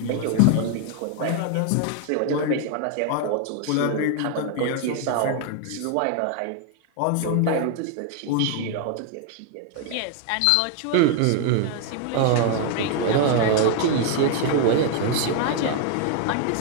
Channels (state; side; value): different; both; correlation 0.00